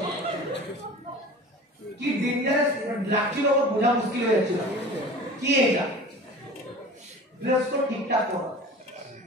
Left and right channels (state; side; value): normal; both; correlation 0.39